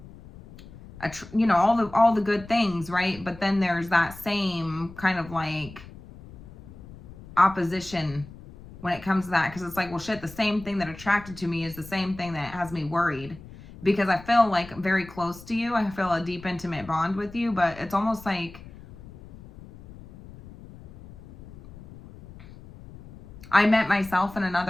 you know, all the good things, right? But then there's that same kind of like opposition when it comes to that, because it's like, well, shit, the same thing that attracted to me is the same thing that has me worried, because I feel like very close to you. I feel a deep, intimate bond with you, but it's almost like I met myself in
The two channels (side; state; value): left; noise; rumble, 18 dB below the sound